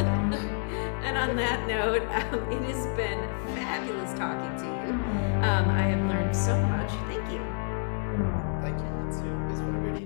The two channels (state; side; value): silent; right; 59 dB below the other